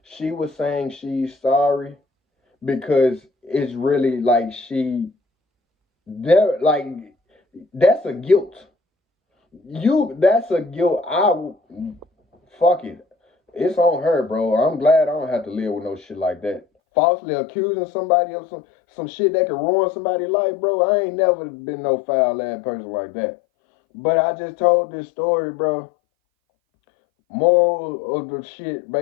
She was saying she's sorry because it's really like there like that's a guilt. That's a guilt. Fuck it. It's on her, bro. I'm glad I don't have to live with no shit like that. Falsely accusing somebody of some shit that could ruin somebody's life, bro. I ain't never been no foul ass person like that. But I just told this story, bro. Moral of the shit,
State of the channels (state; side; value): drops out; right; at 16.7 s